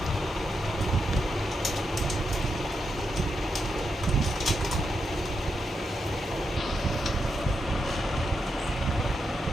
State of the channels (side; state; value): both; normal; correlation 0.84